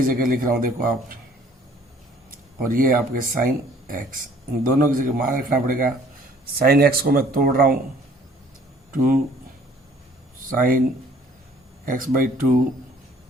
जगह लिख रहा हूँ देखो आप, और ये आपके sin x, इन दोनों की जगह मान रखना पड़ेगा। sin x को मैं तोड़ रहा हूँ 2 sin x/2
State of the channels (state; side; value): normal; both; correlation 0.56